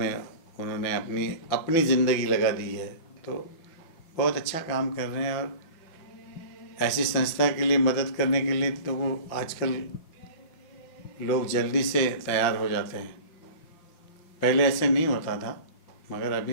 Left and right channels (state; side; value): late; right; 6.0 ms